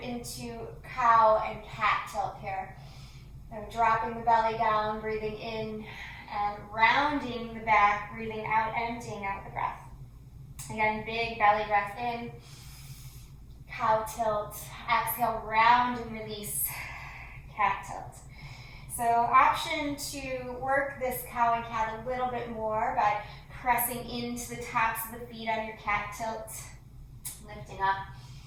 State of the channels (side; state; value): both; identical; correlation 1.00